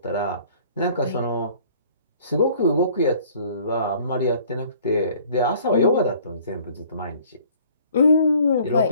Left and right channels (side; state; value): both; inverted; correlation -0.54